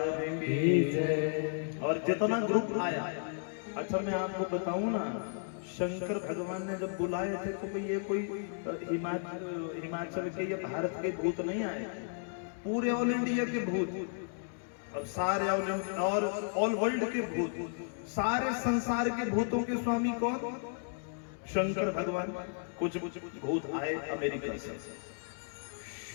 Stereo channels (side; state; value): right; silent; digital silence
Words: की जय। और जितना ग्रुप आया, अच्छा मैं आपको बताऊं ना, शंकर भगवान ने जब बुलाए थे तो ये कोई हिमाचल के या भारत के भूत नहीं आए, पूरे ऑल इंडिया के भूत, और सारे और ऑल वर्ल्ड के भूत, सारे संसार के भूतों के स्वामी कौन? शंकर भगवान कुछ भूत आए अमेरिका से,